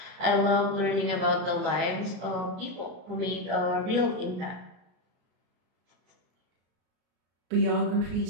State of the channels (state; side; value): late; left; 33 ms